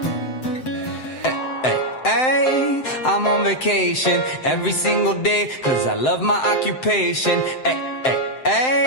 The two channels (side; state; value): right; late; 7.8 ms